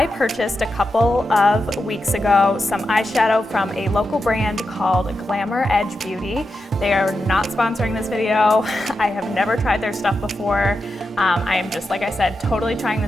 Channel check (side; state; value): both; normal; correlation 0.88